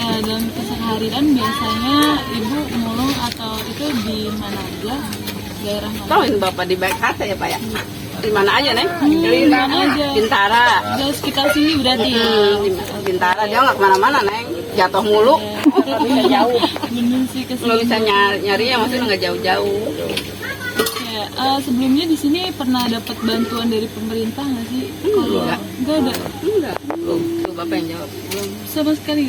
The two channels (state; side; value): identical; both; correlation 1.00